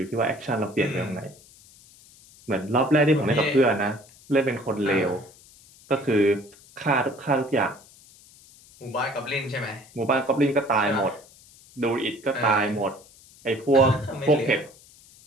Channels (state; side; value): noise; left; hiss, 25 dB below the sound